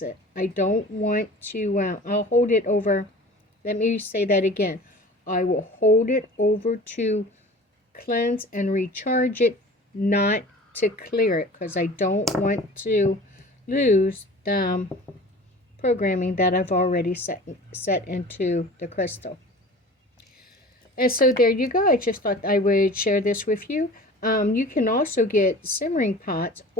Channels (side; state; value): both; normal; correlation 0.41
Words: it. I don't want to, I'll hold it over, let me say that again. I will hold it over to cleanse and recharge it, not to clear it, because I don't want to lose the programming that I've already set into the crystal. And so there you go. I just thought I would share this with you. You can also get simmering pots